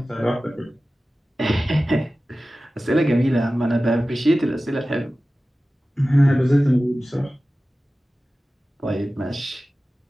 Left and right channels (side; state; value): both; normal; correlation 0.96